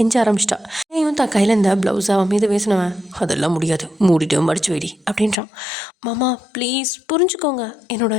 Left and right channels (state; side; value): drops out; right; at 5.4 s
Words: ஆரம்பிச்சிட்டா. ஏன் தான் கையில் இருந்த ப்ளவுஸை அவன் மீது பேசினவன், அதெல்லாம் முடியாது, மூடிட்டு மடிச்சு வைடி அப்படின்றான். மாமா ப்ளீஸ் புரிஞ்சுக்கோங்க, என்னோட